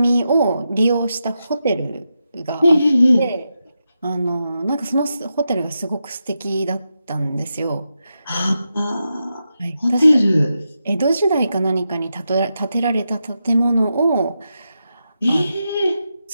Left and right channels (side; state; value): both; inverted; correlation -0.87